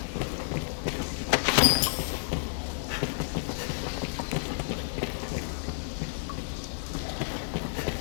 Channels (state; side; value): silent; right; digital silence